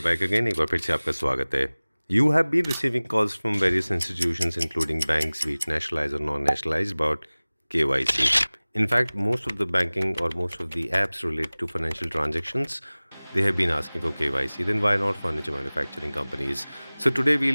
back again. एक बार फिर से आपका स्वागत है। You have been receiving calls from various institutions including banks, be it nationalized or non-nationalized, about KYC. In fact, most of the banking or most of the apps related to financial transactions, they have been asking for KYC. Then why not furniture manufacturing companies? So today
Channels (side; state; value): both; inverted; correlation -1.00